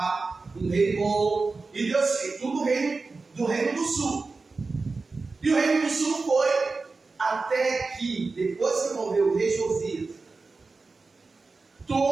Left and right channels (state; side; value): quieter; left; 3.9 dB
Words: um rei bom, e Deus fez tudo do reino do sul. E o reino do sul foi até que, depois que morreu o rei Josias,